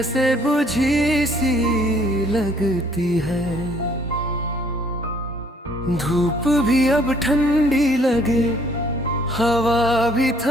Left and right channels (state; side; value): normal; both; correlation 0.62